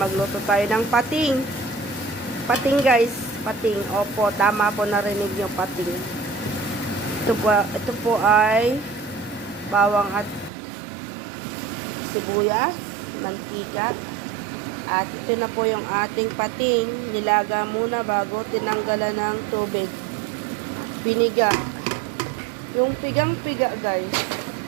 tayo ng pating. Pating guys, pating. Opo, tama po, narinig niyo, pating. Ito po ay bawang at sibuyas, mantika. At ito na po yung ating pating. Nilaga muna bago tinanggalan ng tubig. Piniga. Yung pigang-piga guys.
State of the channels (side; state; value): left; drops out; at 10.5 s